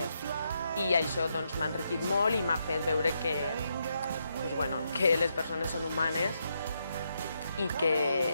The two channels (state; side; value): inverted; both; correlation -0.80